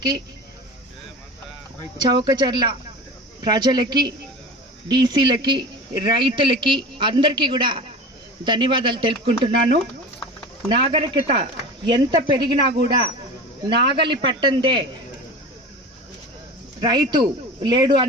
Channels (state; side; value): normal; both; correlation 0.33